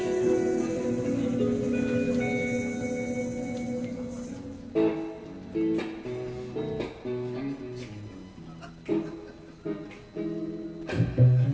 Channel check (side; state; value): both; identical; correlation 1.00